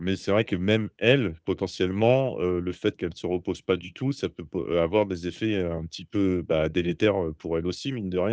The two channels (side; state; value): both; identical; correlation 1.00